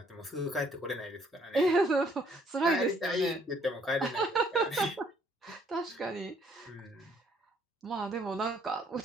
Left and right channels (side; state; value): both; normal; correlation 0.65